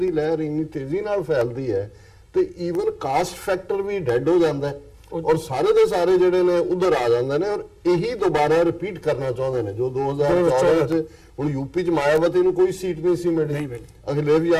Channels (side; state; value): both; identical; correlation 1.00